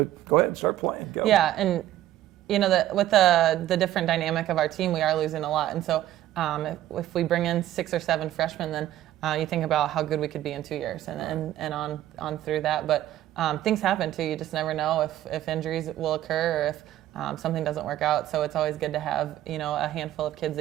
to go ahead and start playing. Go. Yeah, and with the different dynamic of our team, we are losing a lot. And so if we bring in 6 or 7 freshmen, then You think about how good we could be in 2 years and on through that. But things happen too. You just never know if injuries will occur or if something doesn't work out. So it's always good to have, a handful of kids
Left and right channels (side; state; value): left; quieter; 13.4 dB